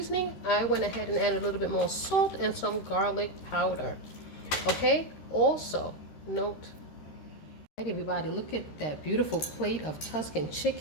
I went ahead and added a little bit more salt and some garlic powder. Okay, also note, all right, everybody, look at that beautiful plate of Tuscan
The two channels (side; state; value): right; late; 13 ms